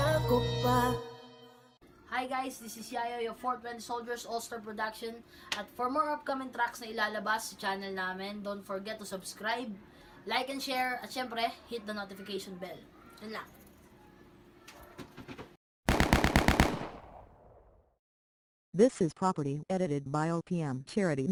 ko pa. Hi guys, this is Yayo, your 420 Soldiers All-Star Production. At for more upcoming tracks na ilalabas sa channel namin, don't forget to subscribe, like and share, at syempre, hit the notification bell. Yun lang. This is Property edited by OPM Charity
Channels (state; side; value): identical; both; correlation 1.00